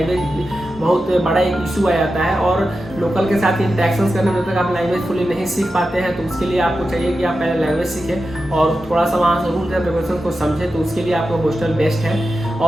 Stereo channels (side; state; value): both; normal; correlation 0.91